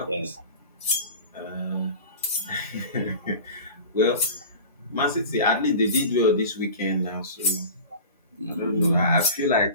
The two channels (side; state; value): both; inverted; correlation -0.36